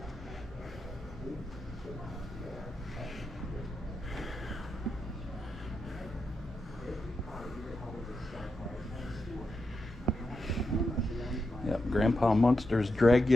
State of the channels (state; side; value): normal; both; correlation 0.86